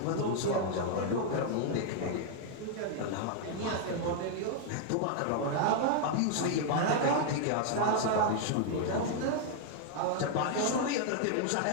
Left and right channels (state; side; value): different; both; correlation 0.00